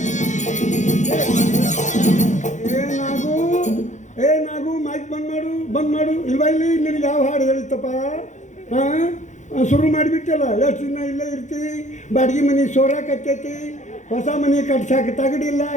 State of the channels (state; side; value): late; right; 0.35 ms